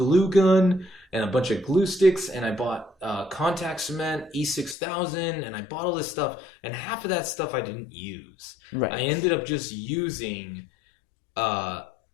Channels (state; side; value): drops out; right; at 4.8 s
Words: gun, and a bunch of glue sticks, and I bought contact cement, E6000, and I bought all this stuff, and half of that stuff I didn't use. Right. I ended up just using